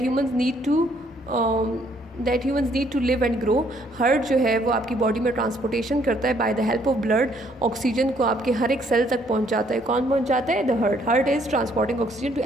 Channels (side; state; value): both; normal; correlation 0.66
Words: need to live and grow. Heart जो है वो आपकी बॉडी में ट्रांसपोर्टेशन करता है by the help of blood. Oxygen को आपके हर एक सेल तक पहुंचाता है. कौन पहुंचाता है? The heart is transporting oxygen to